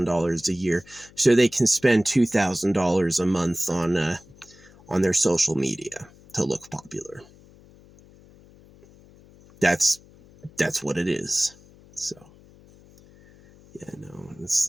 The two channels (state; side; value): noise; left; hum, 25 dB below the sound